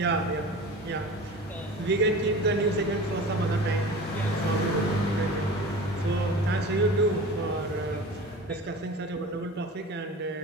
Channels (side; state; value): both; normal; correlation 0.36